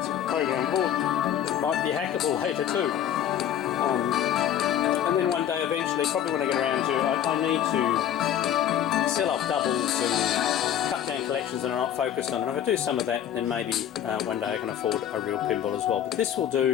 a program board that might be hackable later too. And then one day eventually, probably when I get around to, I need to sell off doubles and cut down collections that are not focused on. And if I do some of that, then maybe one day I can afford a real pinball as well. But this will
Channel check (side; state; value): right; quieter; 10.3 dB